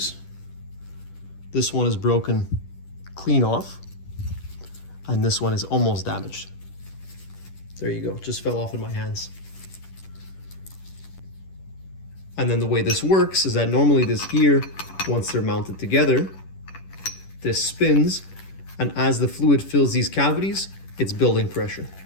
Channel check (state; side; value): late; right; 10 ms